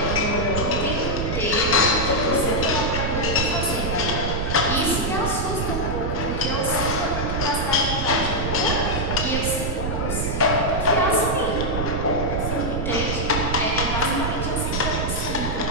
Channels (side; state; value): right; noise; rumble, 2 dB below the sound